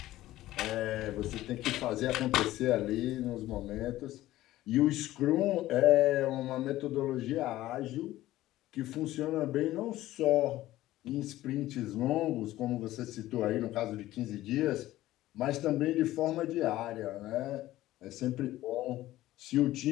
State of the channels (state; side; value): quieter; right; 15.5 dB